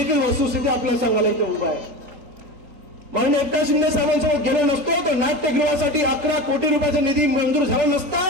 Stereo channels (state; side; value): late; left; 3.9 ms